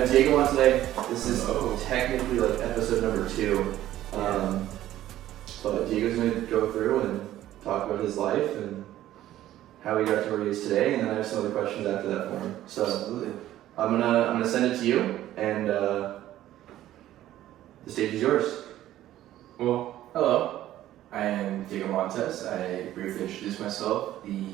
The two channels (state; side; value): quieter; left; 13.5 dB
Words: Diego on today. This is technically like episode number 2. But Diego's gonna go through and talk about his life and how he got to where he is today, and then I have some other questions after that for him. So Absolutely. I'm gonna send it to you, and the stage is yours. Well, hello. I am Diego Montes. I briefly introduced myself